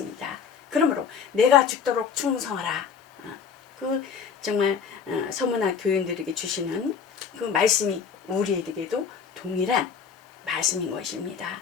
그러므로 내가 죽도록 충성하라. 그 정말 소문화 교인들에게 주시는 그 말씀이 우리에게도 동일한 말씀인 것입니다.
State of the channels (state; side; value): quieter; right; 6.7 dB